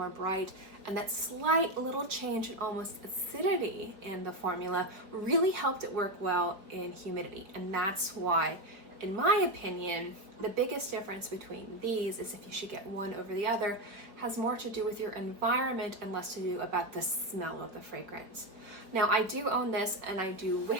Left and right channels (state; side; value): late; left; 4.9 ms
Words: bright, and that slight little change in almost acidity in the formula really helped it work well in humidity. And that's why, in my opinion, the biggest difference between these is if you should get one over the other has more to do with your environment and less to do about the smell of the fragrance. Now, I do own this and I do